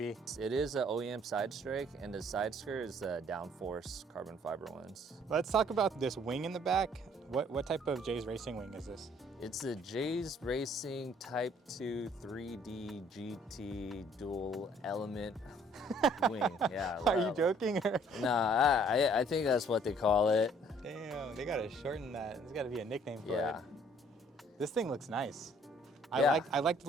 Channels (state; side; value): normal; both; correlation 0.60